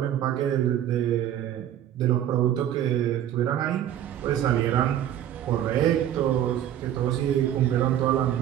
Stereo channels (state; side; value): quieter; left; 11.2 dB